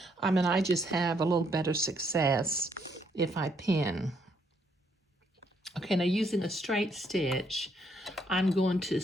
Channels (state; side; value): normal; both; correlation 0.72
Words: And I just have a little better success if I pin. Okay, now using a straight stitch, I'm going to